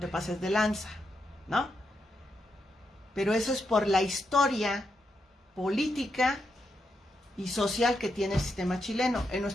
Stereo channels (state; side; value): normal; both; correlation 0.83